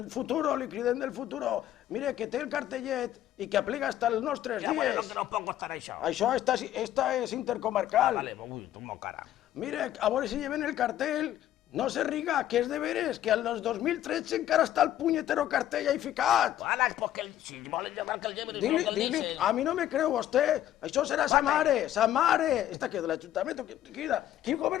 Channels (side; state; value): right; quieter; 12.2 dB